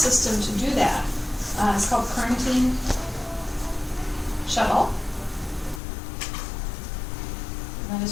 to do that. It's called chromatin shuttle. And that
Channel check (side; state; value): right; drops out; at 5.8 s